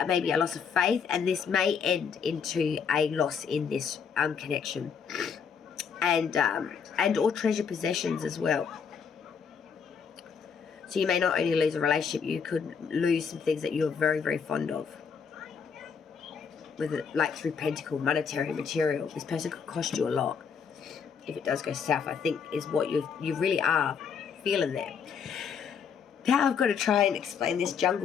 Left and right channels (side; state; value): right; quieter; 6.6 dB